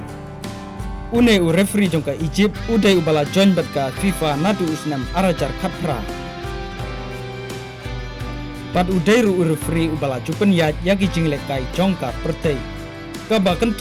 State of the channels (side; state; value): both; identical; correlation 1.00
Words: Une referee jong ka Egypt udai ubala join bat ka FIFA nadu usnam arajar khatra. Pat udai referee ubala jupen ya yaki jinglek kai jong ka pertei. Ka ba